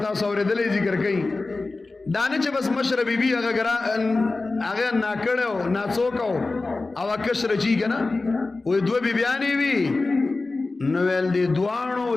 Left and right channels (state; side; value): quieter; right; 3.5 dB